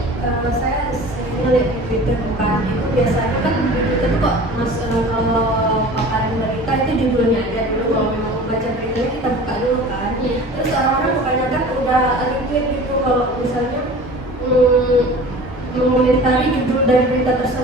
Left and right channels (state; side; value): normal; both; correlation 0.41